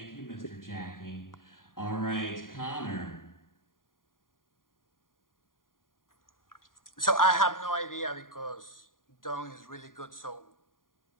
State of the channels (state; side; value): late; right; 0.90 ms